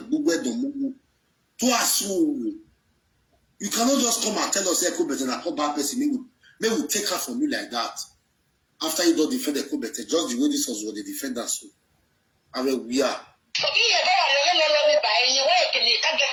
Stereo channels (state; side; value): identical; both; correlation 1.00